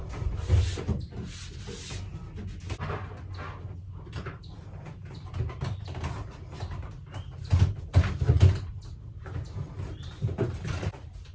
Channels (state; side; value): identical; both; correlation 1.00